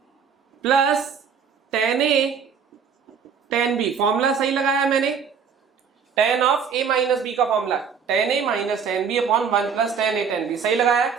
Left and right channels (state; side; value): quieter; left; 6.6 dB